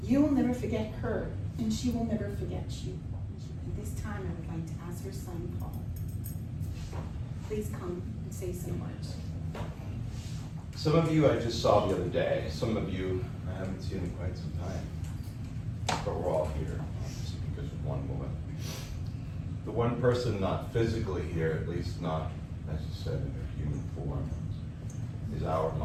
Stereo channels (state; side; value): identical; both; correlation 1.00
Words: You will never forget her, and she will never forget you. At this time, I would like to ask her son, Paul. Please come and say some words. Some of you I just saw the other day. Some of you I haven't seen in quite some time. But we're all here, obviously, because of one woman. The one person not physically here, at least not, as you said, in her human form, is our